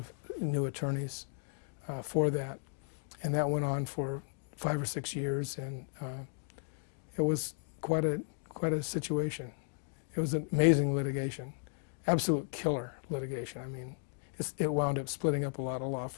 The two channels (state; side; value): silent; right; digital silence